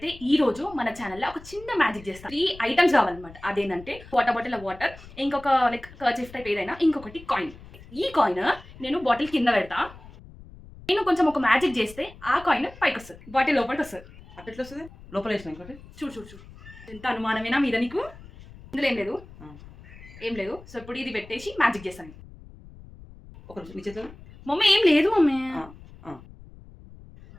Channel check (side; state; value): left; noise; rumble, 19 dB below the sound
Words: ఈ రోజు మన ఛానల్లో ఒక చిన్న మ్యాజిక్ చేస్తాం. 3 ఐటమ్స్ కావాలన్నమాట. అదేంటంటే వాటర్ బాటిల్ వాటర్, ఇంకొక లైక్ కర్చీఫ్ టైప్ ఏదైనా, ఇంకొకటి కాయిన్. ఈ కాయిన్ నేను బాటిల్ కింద పెడతా. నేను కొంచెం ఒక మ్యాజిక్ చేస్తే ఆ కాయిన్ పైకి వస్తుంది, బాటిల్ లోపలికి వస్తుంది. అట్లా ఎట్లా వస్తుంది? లోపల వేసిన ఇంకోటి చూడు చూడు చూడు, ఎంత అనుమానమేనా మీద నీకు? ఇందులో ఏం లేదు, ఏం లేదు. సో ఇప్పుడు ఇది పెట్టేసి మ్యాజిక్ చేస్తాను. ఒక నిమిషం, నీ చేతిలో మమ్మీ ఏం లేదు మమ్మీ.